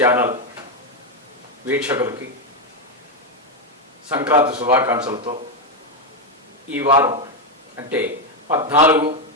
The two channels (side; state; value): both; normal; correlation 0.05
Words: వీక్షకులకి Sankranti శుభాకాంక్షలతో ఈ వారం అంటే